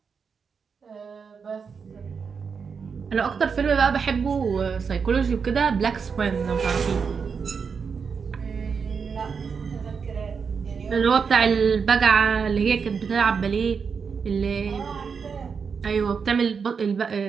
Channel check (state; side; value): quieter; left; 5.9 dB